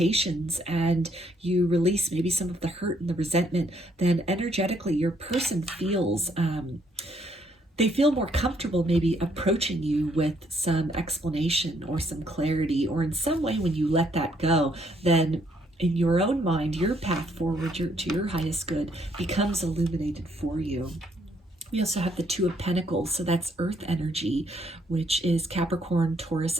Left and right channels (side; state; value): both; normal; correlation 0.69